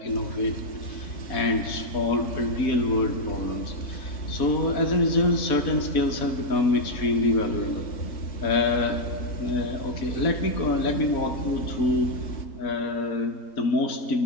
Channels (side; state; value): right; late; 4.2 ms